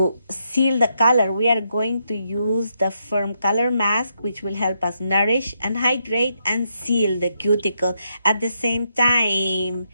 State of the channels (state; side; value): inverted; both; correlation -0.79